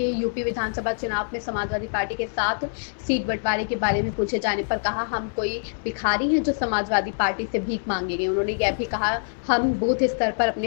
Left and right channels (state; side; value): silent; right; 62 dB below the other